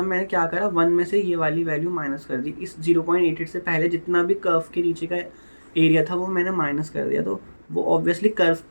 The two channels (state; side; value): inverted; both; correlation -1.00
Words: मैंने क्या करा, 1 में से ये वाली वैल्यू माइनस कर दी। इस 0.88 से पहले जितना भी कर्व के नीचे का एरिया था वो मैंने माइनस कर दिया, तो वो ऑब्वियसली कर्व